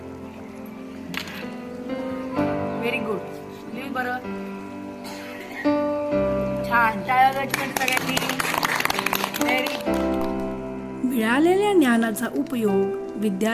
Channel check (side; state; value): both; identical; correlation 1.00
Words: व्हेरी गुड, लिहू बरं, छान, टाळ्या सगळ्यांनी। Very good. मिळालेल्या ज्ञानाचा उपयोग